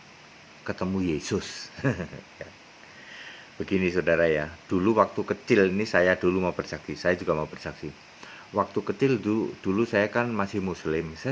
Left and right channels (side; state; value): both; identical; correlation 1.00